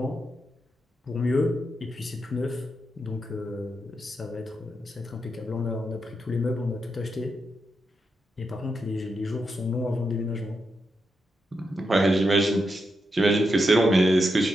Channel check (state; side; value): normal; both; correlation 0.85